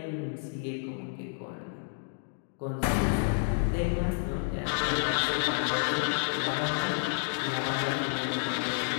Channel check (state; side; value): silent; right; digital silence